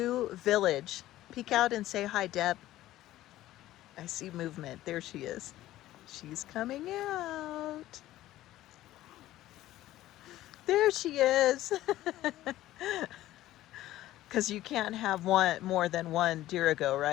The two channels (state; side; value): quieter; right; 14.9 dB